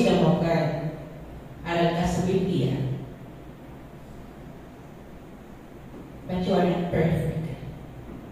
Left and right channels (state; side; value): identical; both; correlation 1.00